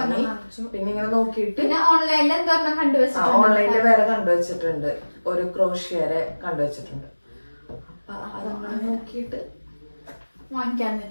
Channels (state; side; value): inverted; both; correlation -1.00